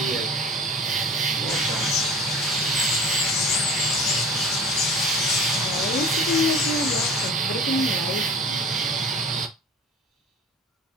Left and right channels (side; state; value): both; normal; correlation 0.40